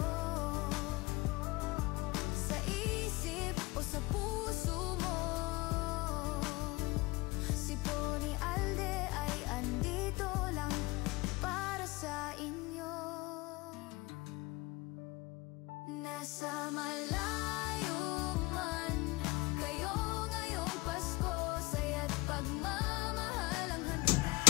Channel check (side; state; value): right; quieter; 22.0 dB